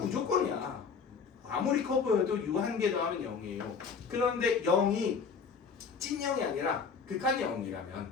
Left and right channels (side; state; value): right; quieter; 5.7 dB